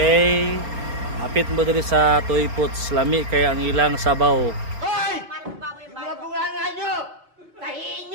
Hapit mo diri sa Toy Pots, lami kay ang ilang sabaw.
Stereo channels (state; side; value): late; left; 4.3 ms